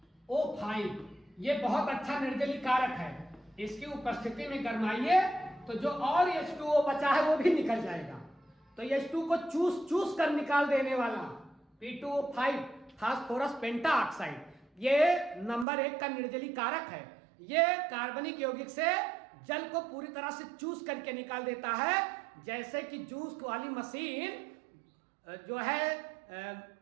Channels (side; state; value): left; drops out; at 15.7 s